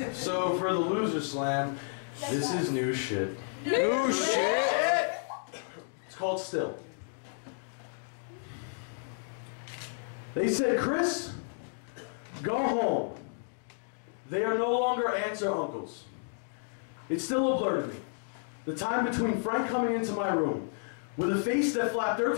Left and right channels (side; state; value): right; silent; digital silence